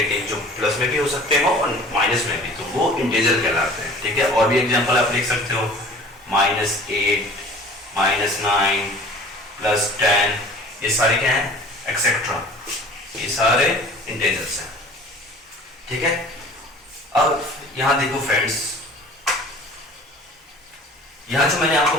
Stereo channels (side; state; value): both; normal; correlation 0.46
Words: जो प्लस में भी हो सकते हो और माइनस में भी, तो वो इंटीजर कहलाते हैं, ठीक है। और भी एग्जांपल आप देख सकते हो, -8, -9, +10, ये सारे क्या है, एक्सेट्रा, ये सारे इंटीजर्स हैं, ठीक है। अब यहां देखो फ्रेंड्स, यहां जो मैंने